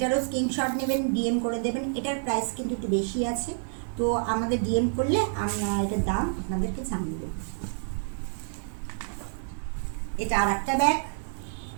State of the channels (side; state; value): left; silent; digital silence